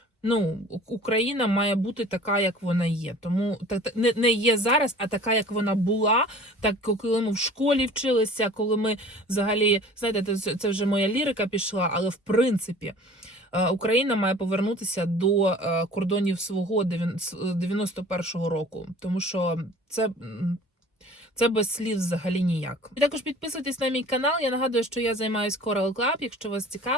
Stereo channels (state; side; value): normal; both; correlation 0.46